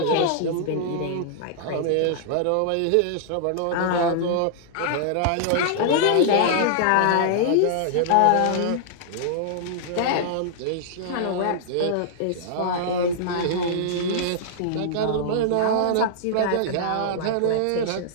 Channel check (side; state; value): both; different; correlation -0.01